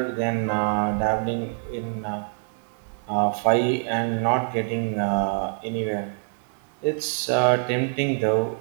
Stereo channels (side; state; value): left; silent; 57 dB below the other